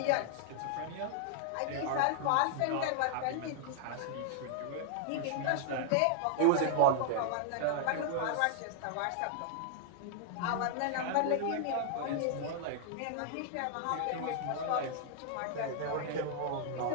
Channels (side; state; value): both; different; correlation -0.01